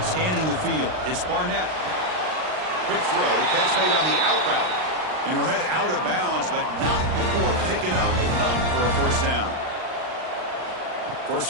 the field, it's Barnett. Quick throw, catch made on the out route. And he'll head out of bounds, but not before picking up enough for a 1st down. 1st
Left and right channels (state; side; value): late; left; 39 ms